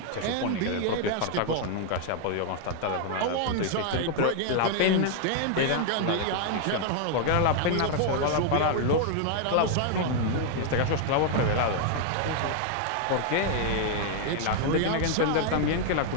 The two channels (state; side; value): different; both; correlation 0.00